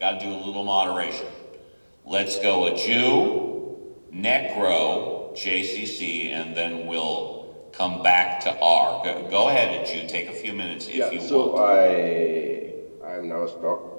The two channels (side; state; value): both; inverted; correlation -1.00